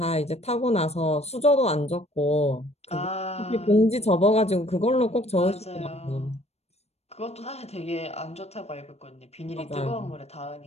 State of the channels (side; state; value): right; late; 0.31 ms